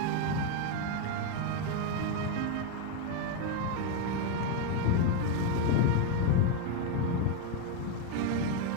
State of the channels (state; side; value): different; both; correlation 0.02